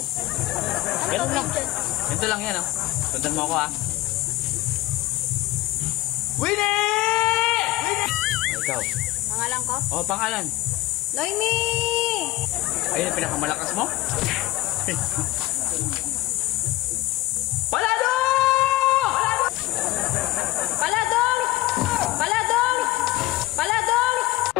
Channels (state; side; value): quieter; right; 18.0 dB